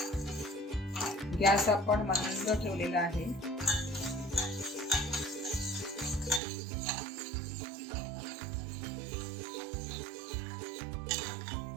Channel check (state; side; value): drops out; left; at 6.4 s